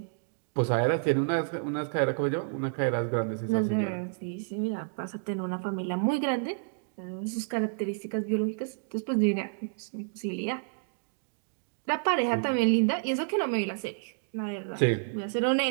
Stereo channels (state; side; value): silent; left; digital silence